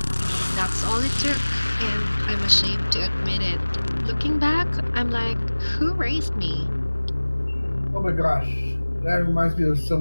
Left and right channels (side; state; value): both; inverted; correlation -1.00